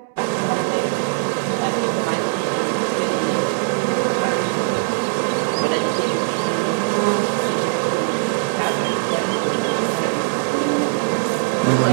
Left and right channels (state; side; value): silent; left; 65 dB below the other